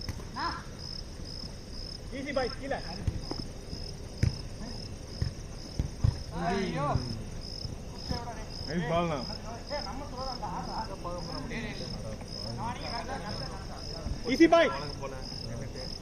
easy bye கீழ ஐயோ nice ball na easy bye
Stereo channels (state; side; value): identical; both; correlation 1.00